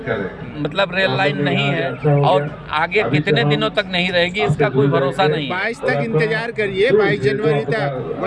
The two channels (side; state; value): both; identical; correlation 1.00